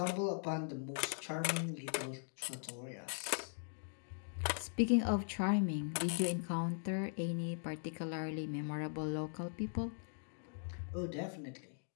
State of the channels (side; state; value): right; silent; digital silence